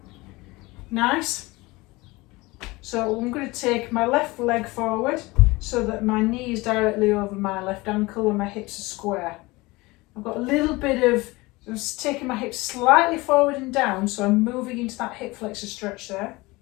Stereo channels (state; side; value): quieter; right; 22.3 dB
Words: Nice. So I'm going to take my left leg forward so that my knee is directly over my left ankle and my hips are square. I've got a little bit of, I'm taking my hips slightly forward and down, so I'm moving into that hip flexor stretch there.